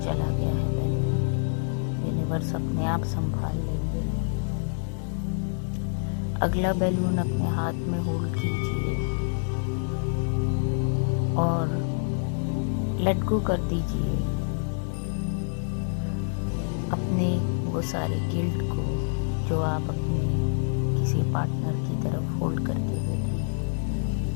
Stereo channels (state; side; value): silent; right; 60 dB below the other